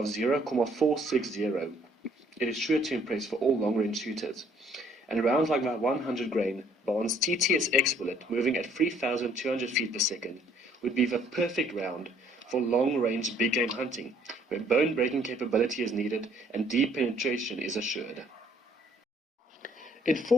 0.460, it is sure to impress for all long-range shooters. And rounds like that 100 grain Barnes TTSX bullet moving at 3,200 feet per second would be the perfect round for long-range big-game hunting, where bone-breaking capability is needed and deep penetration is assured. In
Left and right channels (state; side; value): normal; both; correlation 0.62